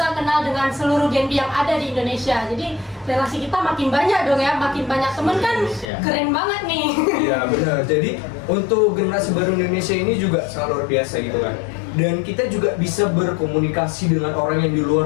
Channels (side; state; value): right; drops out; at 5.9 s